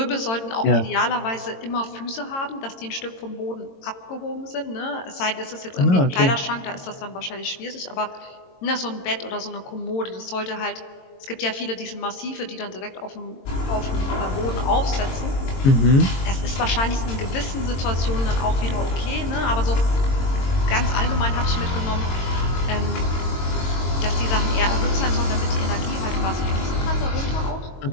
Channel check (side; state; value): right; late; 22 ms